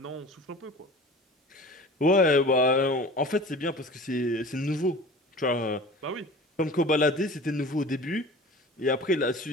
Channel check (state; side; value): normal; both; correlation 0.40